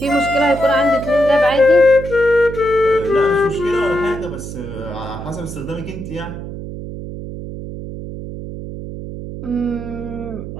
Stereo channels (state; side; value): noise; right; hum, 9 dB below the sound